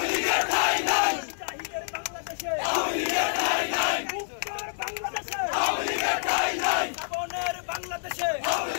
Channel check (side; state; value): right; silent; digital silence